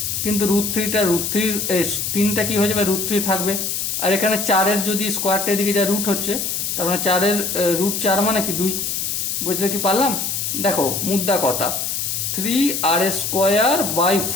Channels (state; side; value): noise; left; hiss, 2 dB below the sound